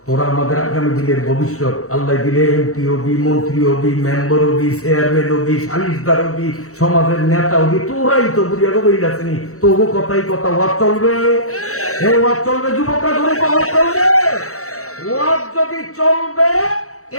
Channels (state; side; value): late; right; 0.64 ms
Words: তোরা আমাদের আগামী দিনের ভবিষ্যৎ। আল্লাহ দিলে এমপি হবি, মন্ত্রী হবি, মেম্বার হবি, চেয়ারম্যান হবি, সালিশদার হবি, সমাজের নেতা হবি, তোরাই তো বুঝিয়া কবির আসেনি। তবু কথাই কথা, ওয়াজ চলবে, ওয়াজ চলবে, যুবকরা ধরে ওয়াজ চলবে। ওয়াজ যদি চলবে,